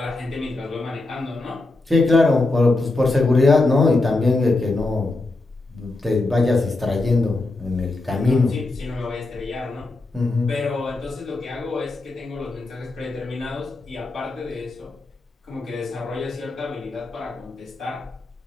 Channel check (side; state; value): right; quieter; 3.1 dB